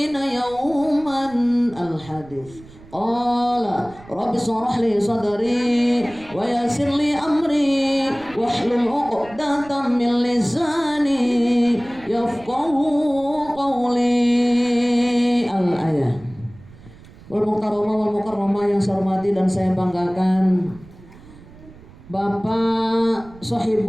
yawman. Al-hadits. Qala rabbi shrah li sadri wa yassir li amri wahlul 'uqdatam min lisani yafqahu qawli. Al-ayah. Wal mukarramah wal mukarramah yang saya hormati dan saya banggakan Bapak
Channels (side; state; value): right; noise; rumble, 21 dB below the sound